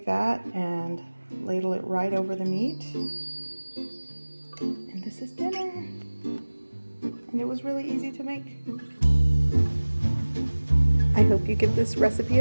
that and ladle it right over the meat. And this is dinner. And it was really easy to make. I hope you give this recipe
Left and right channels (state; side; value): inverted; both; correlation -1.00